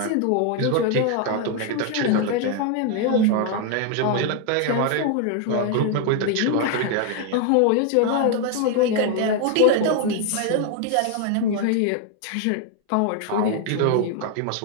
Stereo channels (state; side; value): different; both; correlation 0.01